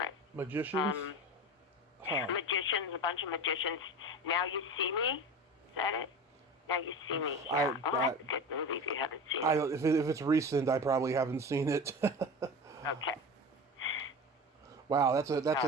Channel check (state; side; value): normal; both; correlation 0.30